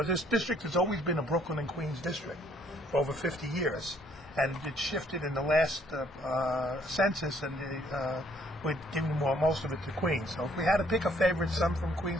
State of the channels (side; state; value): both; normal; correlation 0.65